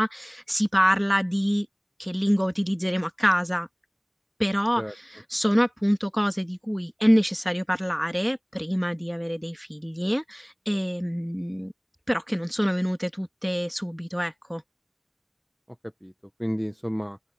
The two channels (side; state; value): both; identical; correlation 1.00